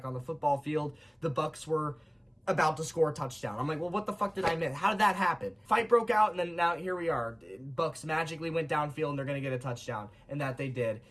on the football field, the Bucs were about to score a touchdown. I'm like, well, what the fuck did I miss? How did that happen? Fight broke out, and then now here we are. Bucs magically went downfield, and they're going to get a touchdown, and that they did.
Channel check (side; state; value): both; identical; correlation 1.00